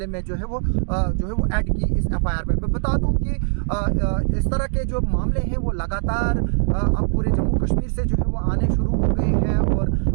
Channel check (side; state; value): left; silent; digital silence